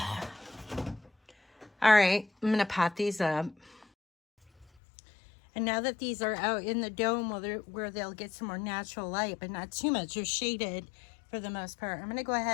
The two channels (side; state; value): right; drops out; at 4.7 s